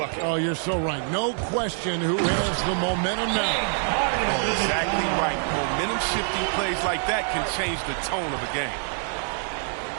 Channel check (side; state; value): left; silent; 58 dB below the other